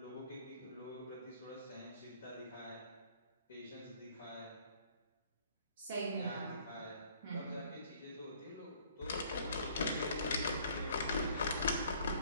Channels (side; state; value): both; inverted; correlation -0.58